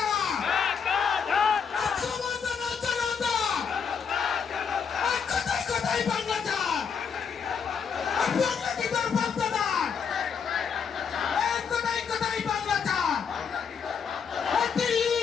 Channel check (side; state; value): right; quieter; 6.5 dB